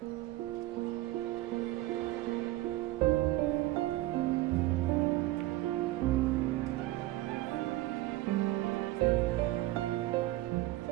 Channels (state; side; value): quieter; left; 17.2 dB